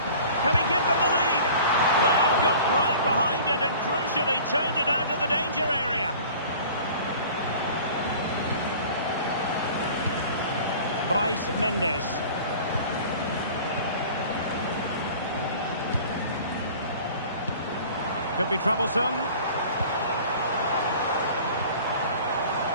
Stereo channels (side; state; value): both; inverted; correlation -0.44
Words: he give them the lead? Well, got right behind it and crucially turned it out of the danger area. Bryce Mendes. Could be troublesome.